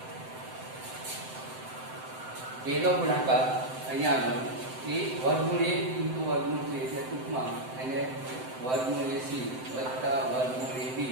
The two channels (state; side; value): late; left; 7.8 ms